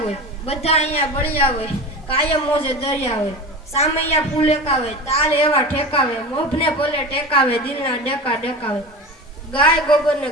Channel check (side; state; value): both; normal; correlation 0.30